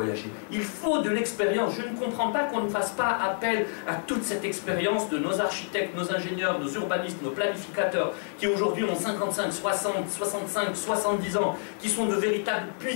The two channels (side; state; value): right; silent; 59 dB below the other